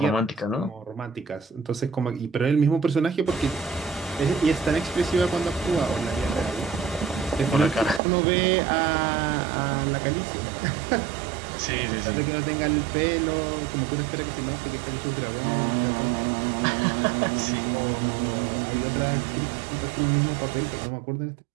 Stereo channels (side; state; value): left; drops out; at 8.0 s